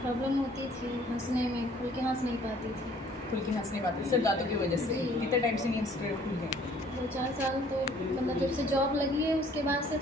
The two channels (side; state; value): both; normal; correlation 0.57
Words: प्रॉब्लम होती थी हंसने में, खुल के हंस नहीं पाती थी। खुल के हंस नहीं पाते सिर्फ दांतों की वजह से? कितने टाइम से नहीं हंस रहे खुल के? 2-4 साल तो मतलब जब से जॉब लगी है उसके बाद से